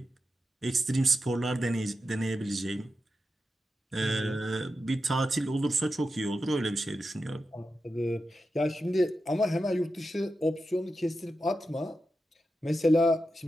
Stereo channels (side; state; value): both; normal; correlation 0.89